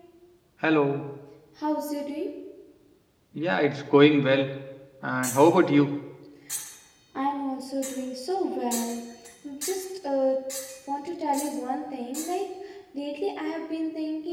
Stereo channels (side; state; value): both; identical; correlation 1.00